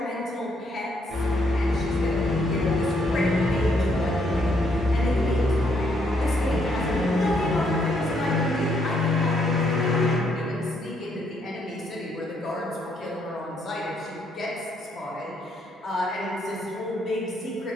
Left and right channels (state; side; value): normal; both; correlation 0.73